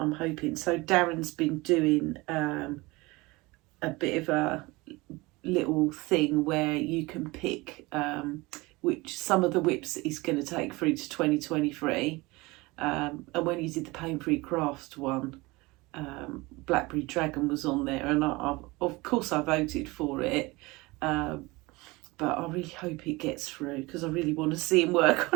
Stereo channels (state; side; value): quieter; left; 22.9 dB